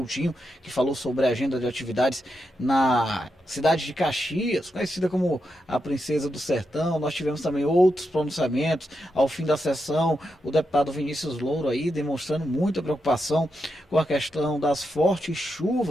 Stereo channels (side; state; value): both; normal; correlation 0.85